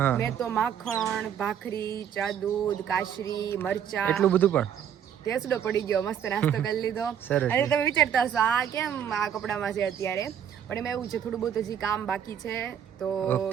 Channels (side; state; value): left; quieter; 8.9 dB